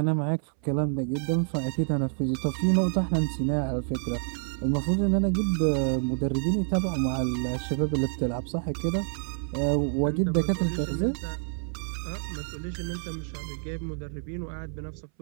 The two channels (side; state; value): left; silent; 59 dB below the other